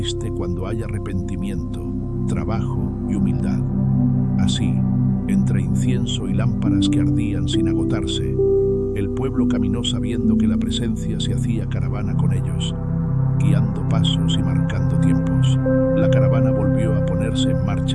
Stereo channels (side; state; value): both; identical; correlation 1.00